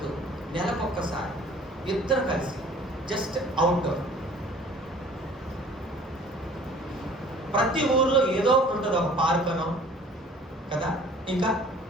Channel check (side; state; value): both; normal; correlation 0.51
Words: నెలకొక్కసారి ఇద్దరు కలిసి జస్ట్ అవుట్డోర్. ప్రతి ఊర్లో ఏదో ఒకటి ఉంటుంది. ఒక పార్క్ అనో కదా, ఇంకా